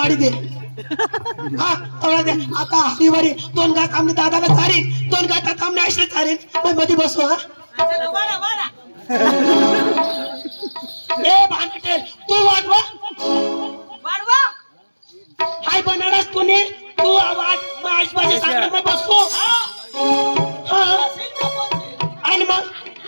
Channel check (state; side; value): inverted; both; correlation -1.00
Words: दे हा थोडा दे आता हरीवारी 2 गात आम्ही दादाला चारीन 2 गातात आम्ही आईला चारीन मग मध्ये बसू हा ए भांडटेल तू वाढवा हाय बनारस तूने तू आवाज माझ माझे सांग मैं बसू हां आणि मग